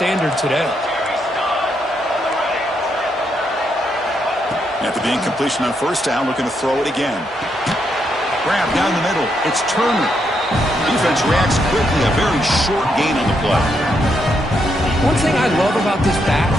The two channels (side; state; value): both; normal; correlation 0.79